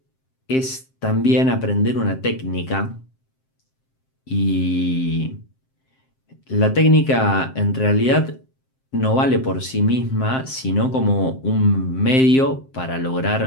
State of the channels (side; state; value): right; late; 7.6 ms